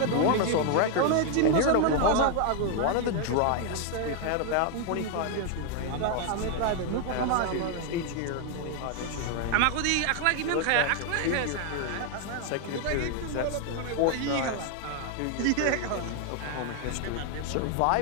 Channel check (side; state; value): both; different; correlation 0.00